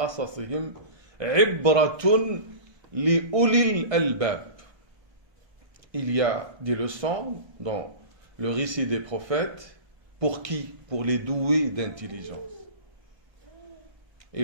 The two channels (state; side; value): late; left; 1.3 ms